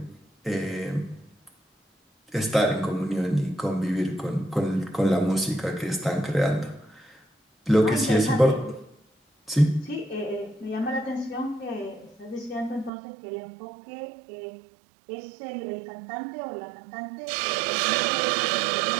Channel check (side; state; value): left; drops out; at 12.9 s